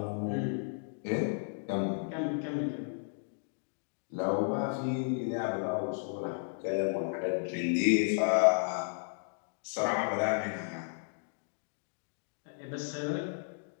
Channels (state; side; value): silent; right; digital silence